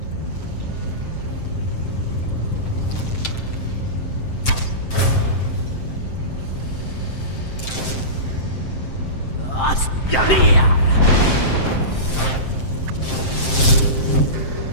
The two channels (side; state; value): right; late; 7.6 ms